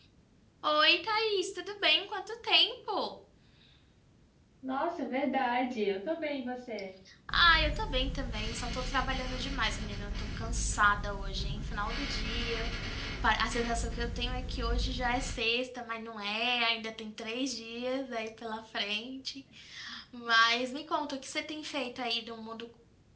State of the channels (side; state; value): both; identical; correlation 1.00